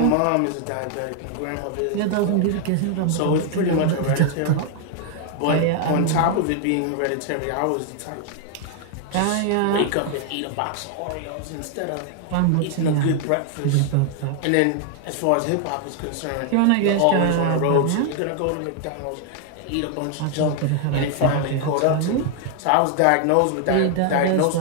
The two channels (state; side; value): different; both; correlation 0.00